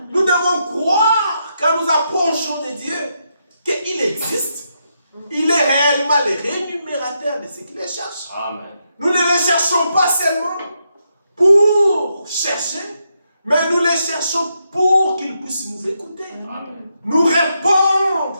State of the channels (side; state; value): both; inverted; correlation -0.81